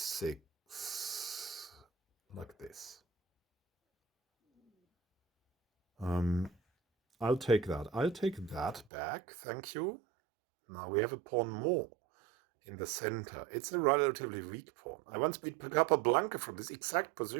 like this. I'll take that. I'll take that back, thank you. Now we have a pawn more in the center. It's a relatively weak pawn. I once beat Capablanca from this exact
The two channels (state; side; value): drops out; left; at 8.9 s